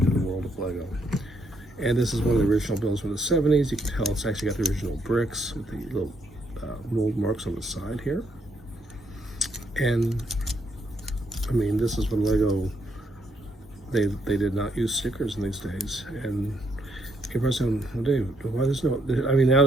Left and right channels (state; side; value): normal; both; correlation 0.74